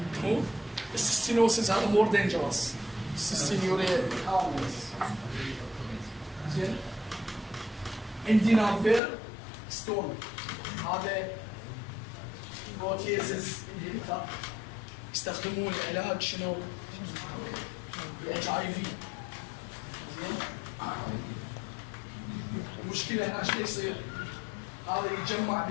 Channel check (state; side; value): drops out; right; at 9.0 s